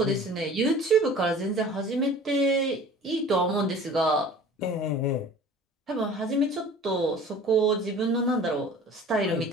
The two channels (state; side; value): normal; both; correlation 0.44